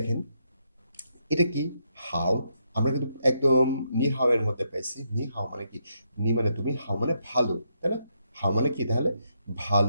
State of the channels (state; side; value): inverted; both; correlation -0.79